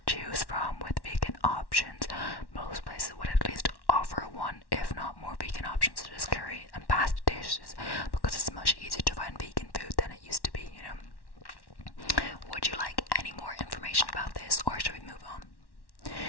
choose from with vegan options. Most places would at least offer one, if not more, vegan options such as curry and pasta dishes, because it's much easier to find vegan food than it used to be, Would you like any more information about this, or should we move on?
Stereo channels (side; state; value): right; late; 1.1 ms